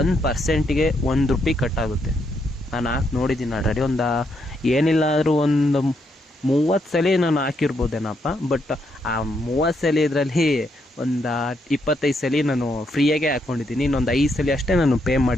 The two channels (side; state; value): both; normal; correlation 0.77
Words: ₹1 ಕಟ್ಟಾಗುತ್ತೆ. ನಾನು ಹಾಕಿ ನೋಡಿದ್ದೀನಿ ಆಲ್ರೆಡಿ. ಏನಿಲ್ಲ ಆದರೂ ಒಂದು 30 ಸಲ ನಾನು ಹಾಕಿರ್ಬೋದೇನಪ್ಪ. ಬಟ್ ಆ 30 ಸಲ ಇದರಲ್ಲಿ ಒಂದು 25 ಸಲ ನಾನು ಫ್ರೀಯಾಗೆ ಹಾಕ್ಕೊಂಡಿದ್ದೀನಿ. ಇನ್ನೊಂದು 5 ಸಲ ಅಷ್ಟೇ ನಾನು ಪೇ